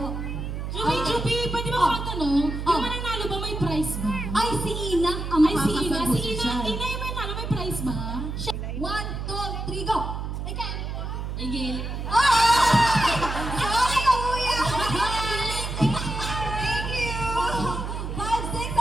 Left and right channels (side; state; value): right; noise; hum, 5 dB below the sound